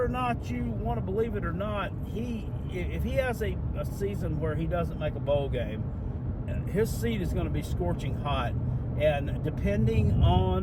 or not you want to believe it or not, if he has a season where he doesn't make a bowl game, his seat is going to be scorching hot. And depending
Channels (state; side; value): identical; both; correlation 1.00